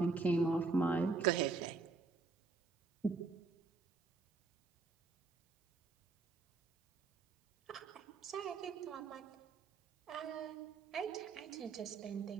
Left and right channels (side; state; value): left; quieter; 4.3 dB